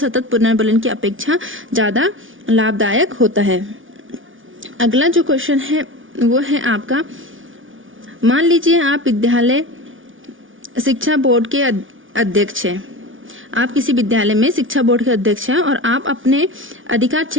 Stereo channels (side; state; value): left; late; 0.57 ms